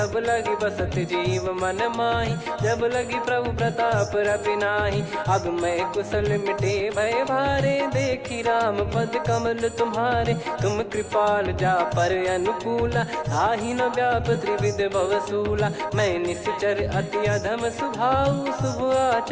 लगी बसत जीव मन माही। जब लगी प्रभु प्रताप रवि नाही, अब मैं कुशल मिटे भय भारे। देखी राम पद कमल तुम्हारे, तुम कृपाल जा पर अनुकूला। ताहि न व्याप त्रिविध भवसूला, मैं निश्चर अति अधम सुभाऊ। शुभ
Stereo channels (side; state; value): both; identical; correlation 1.00